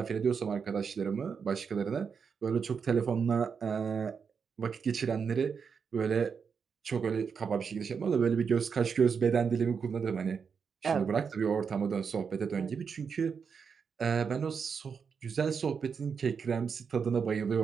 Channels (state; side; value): quieter; left; 6.2 dB